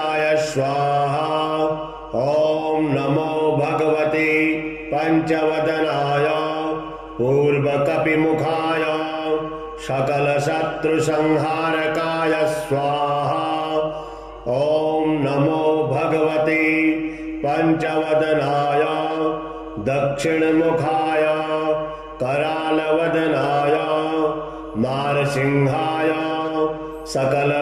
स्वाहा। ॐ नमो भगवते पंचवदनाय पूर्वकपिमुखाय सकलशत्रुसंहारकाय स्वाहा। ॐ नमो भगवते पंचवदनाय दक्षिणमुखाय करालवदनाय नारसिंहाय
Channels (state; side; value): identical; both; correlation 1.00